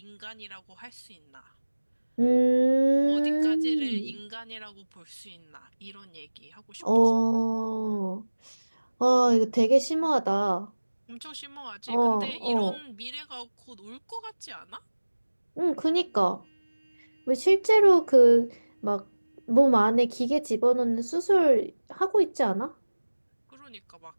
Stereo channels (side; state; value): both; inverted; correlation -1.00